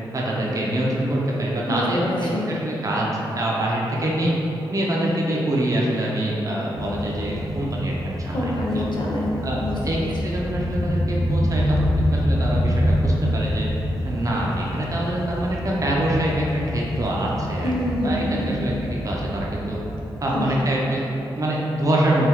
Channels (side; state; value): both; normal; correlation 0.80